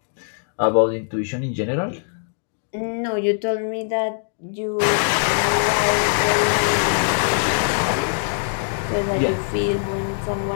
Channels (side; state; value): right; silent; digital silence